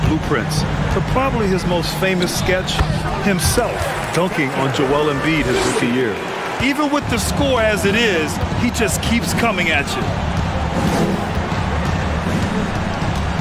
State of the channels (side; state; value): both; identical; correlation 1.00